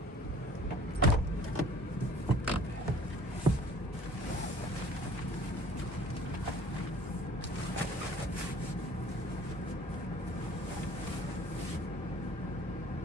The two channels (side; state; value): both; normal; correlation 0.51